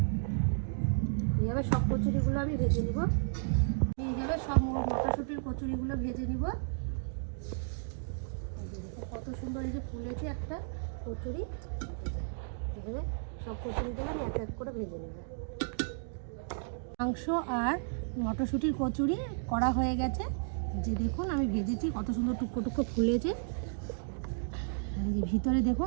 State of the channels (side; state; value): left; silent; digital silence